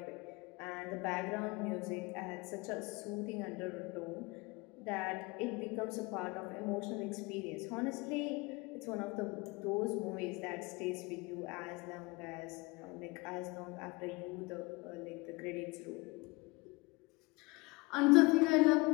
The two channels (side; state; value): right; quieter; 25.2 dB